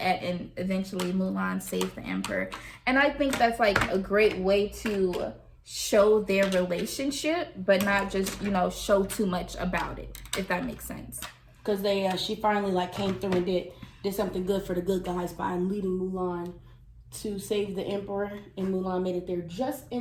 and eventually Mulan saves the emperor. And I think that's like a great way to show their relationship, but not just, you know, show too much about it, if that makes sense. Because she finally like came through and did something good for the good guys by leading Mulan to save the emperor, and Mulan made it there just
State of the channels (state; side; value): identical; both; correlation 1.00